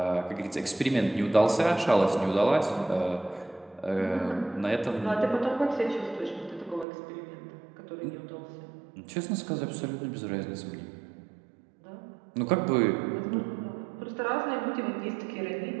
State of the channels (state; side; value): drops out; left; at 6.9 s